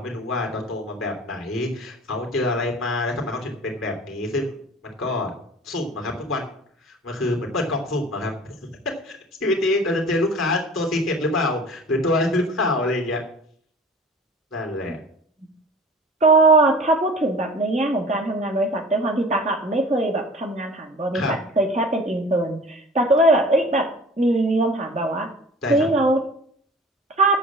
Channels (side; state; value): both; normal; correlation 0.43